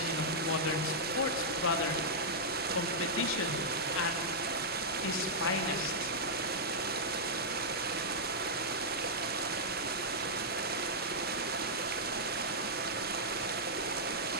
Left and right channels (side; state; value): both; normal; correlation -0.09